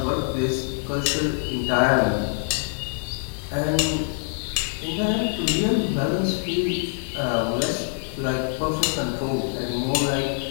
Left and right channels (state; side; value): silent; right; digital silence